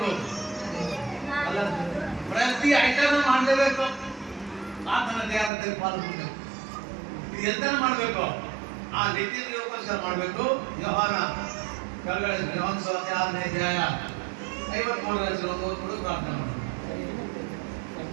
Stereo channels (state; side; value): drops out; left; at 5.5 s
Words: ಪ್ರತಿ ಐಟಮ್ ಮಾಡಲೇಬೇಕು. ಆತನ ದೇಹದಲ್ಲಿ ಪಾಲ್ಗೊಳ್ಬೇಕು. ಇದು ಎಂತ ಮಾಡಬೇಕು? ಆ ನಿತ್ಯಕ್ಕೋಸ್ಕರ ಮಾಡಬೇಕು. ಯೋಹಾನ ಕೆಳಗಡೆ ಯೋಹಾನ ಸುವಾರ್ತೆ 6ನೇ ಅಧ್ಯಾಯ 53ರ ಓದ್ಕೊಂಡು ಪ್ರಾರ್ಥನೆ ಮಾಡೋಣ.